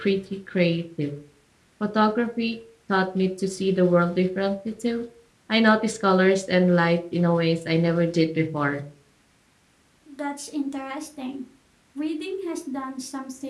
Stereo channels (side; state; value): both; identical; correlation 1.00